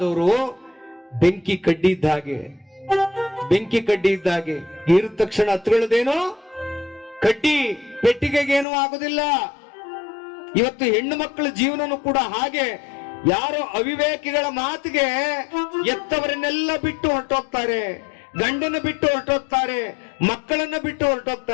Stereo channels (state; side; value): drops out; right; at 8.7 s